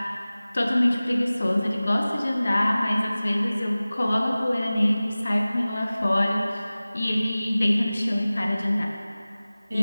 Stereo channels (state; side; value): inverted; both; correlation -0.98